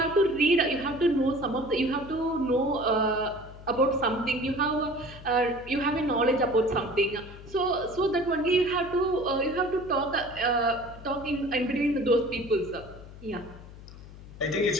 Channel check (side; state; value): left; noise; hum, 16 dB below the sound